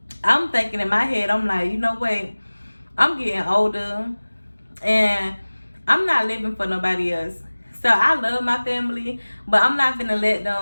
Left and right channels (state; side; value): inverted; both; correlation -1.00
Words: I'm thinking in my head, I'm like, you know what, I'm getting older and I'm not living for nobody else. So I love my family, but I'm not gonna let